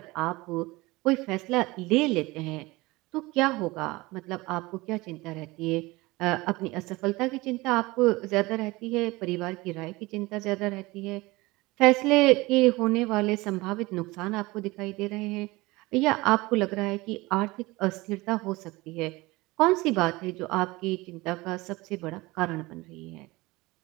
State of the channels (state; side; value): quieter; left; 21.6 dB